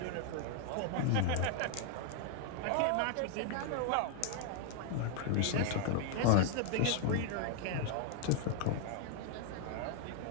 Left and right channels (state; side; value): different; both; correlation 0.00